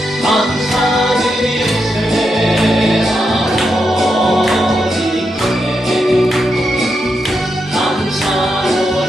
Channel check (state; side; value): normal; both; correlation 0.84